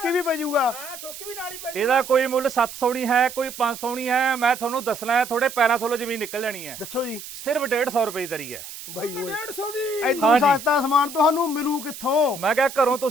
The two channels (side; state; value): right; noise; hiss, 12 dB below the sound